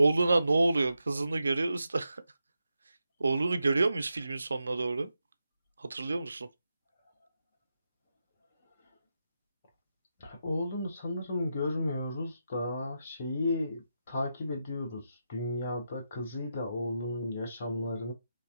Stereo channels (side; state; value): both; inverted; correlation -0.87